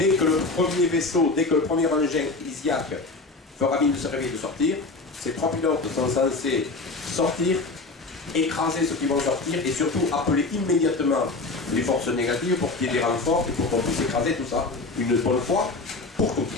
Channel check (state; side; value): quieter; right; 3.5 dB